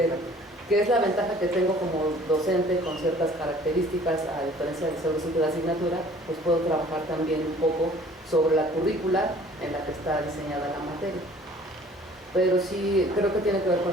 Que es la ventaja que tengo como docente con ciertas características, a diferencia de ser docente de asignatura, pues puedo trabajar también un poco sobre la currícula en la que está diseñada la materia. Pero sí, creo que tiene que ver con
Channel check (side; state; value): both; normal; correlation 0.52